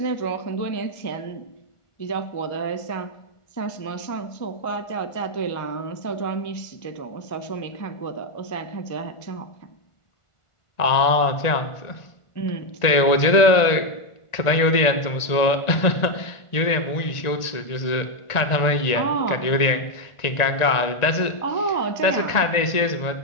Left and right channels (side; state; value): right; late; 1.9 ms